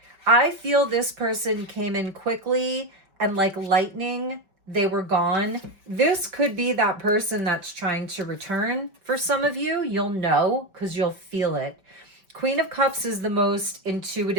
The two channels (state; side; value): late; left; 5.2 ms